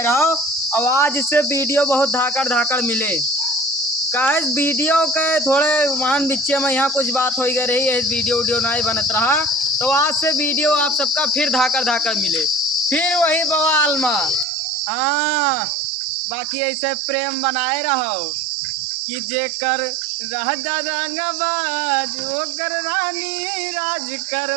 रहो। और आज इससे वीडियो बहुत धाकड़ धाकड़ मिले कहे वीडियो के थोड़े मान बिच्चे में यहाँ कुछ बात हो गई रही है, वीडियो वीडियो नहीं बनत रहा। तो आज से वीडियो आप सबका फिर धाकड़ धाकड़ मिले, फिर वही बवाल में। हाँ, बाकी ऐसे प्रेम बनाए रहो कि जेकर रह रंगबाज ओकर रानी राज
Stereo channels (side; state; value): left; drops out; at 14.5 s